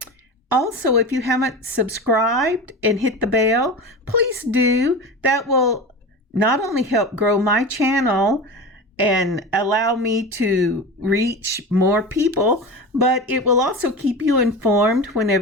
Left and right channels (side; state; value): both; normal; correlation 0.28